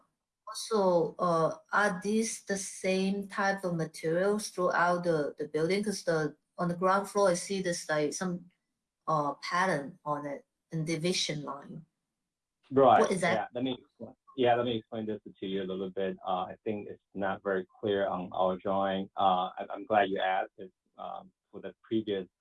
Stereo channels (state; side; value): identical; both; correlation 1.00